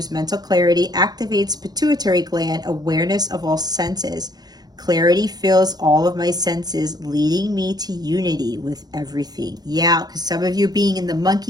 mental clarity, activates pituitary gland, awareness of all senses. Clarity fills all of my senses, leading me to unity with everything. Yeah, because some of you being in the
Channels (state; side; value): late; left; 0.19 ms